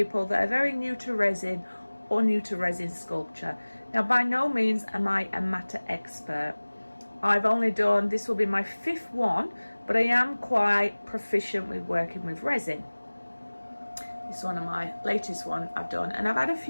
that are very new to resin or new to resin sculpture. Now by no means am I a matter expert. I've only done, this will be my 5th one, but I am quite proficient with working with resin. This is one of my latest one I've done, and I've had a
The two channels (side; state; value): both; inverted; correlation -1.00